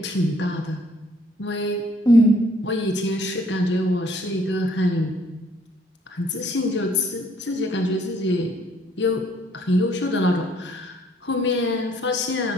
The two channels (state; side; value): normal; both; correlation 0.62